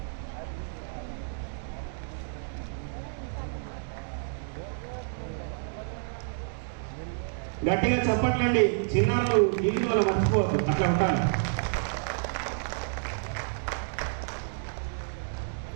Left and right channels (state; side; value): silent; left; digital silence